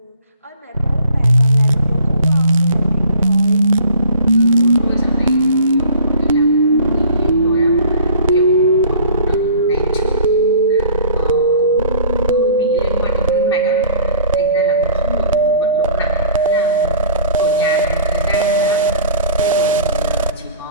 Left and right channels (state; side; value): inverted; both; correlation -0.46